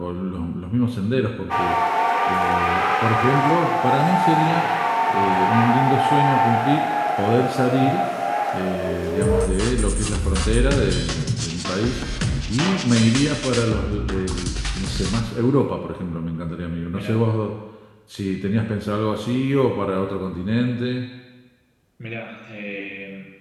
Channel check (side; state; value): both; identical; correlation 1.00